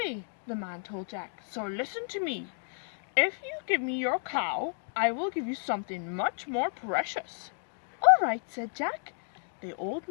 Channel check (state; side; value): silent; right; digital silence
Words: the man told Jack, "so listen to me. If you give me your cow, I will give you something much more precious." "All right," said Jack. The old